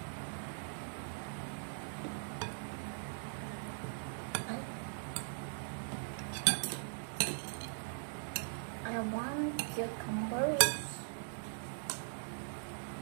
I want cucumbers.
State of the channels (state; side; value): silent; left; digital silence